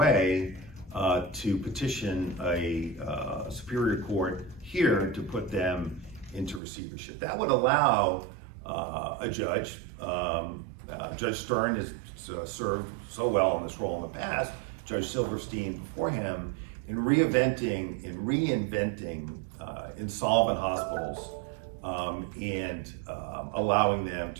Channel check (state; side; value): drops out; left; at 6.6 s